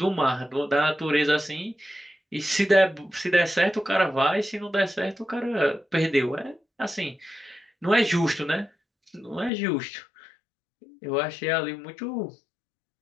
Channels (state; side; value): drops out; right; at 9.5 s